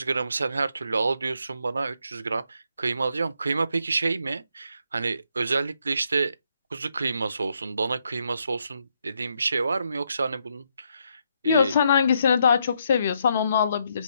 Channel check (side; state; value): both; inverted; correlation -0.76